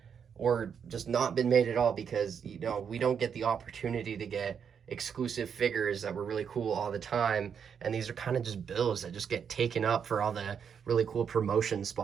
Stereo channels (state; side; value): quieter; left; 7.2 dB